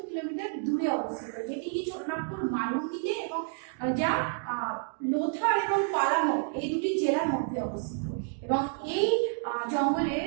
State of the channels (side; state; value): left; silent; 58 dB below the other